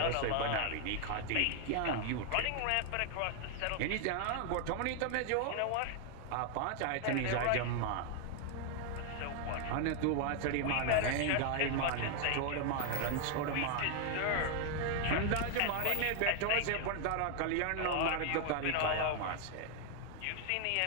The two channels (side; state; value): both; different; correlation 0.00